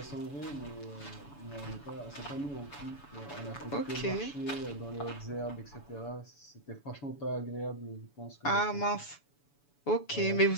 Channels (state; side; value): late; right; 7.0 ms